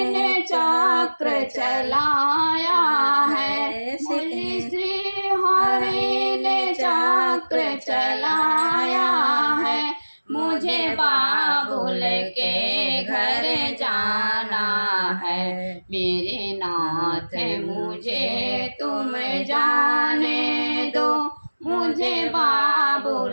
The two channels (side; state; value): both; inverted; correlation -1.00